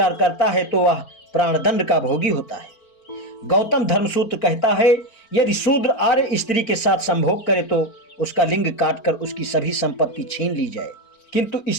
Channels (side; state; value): right; late; 4.4 ms